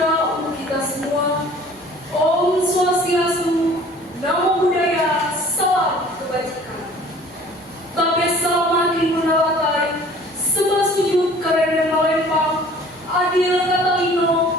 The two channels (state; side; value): normal; both; correlation 0.50